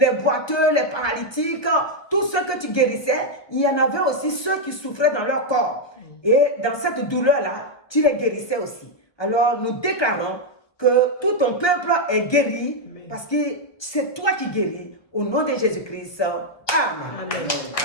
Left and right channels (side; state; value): right; late; 1.2 ms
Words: boiteux, les paralytiques, tous ceux que tu guérissais, il y en avait aussi ceux qui souffraient dans leur corps. Et dans cette douleur-là, tu les guérissais aussi. Alors, nous déclarons que tout ton peuple est guéri parce que c'est toi qui guéris. Au nom de Jésus-Christ. Amen. Amen.